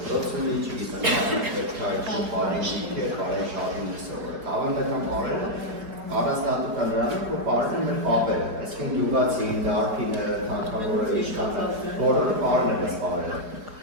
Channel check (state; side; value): late; left; 4.8 ms